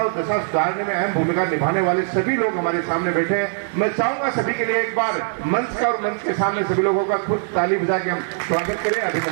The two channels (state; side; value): silent; left; digital silence